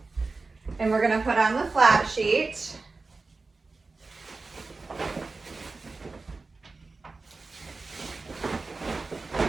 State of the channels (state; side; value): quieter; left; 3.8 dB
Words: and we're going to put on the flat sheet.